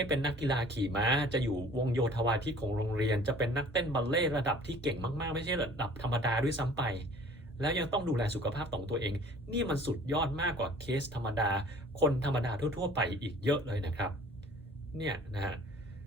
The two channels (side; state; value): both; normal; correlation 0.50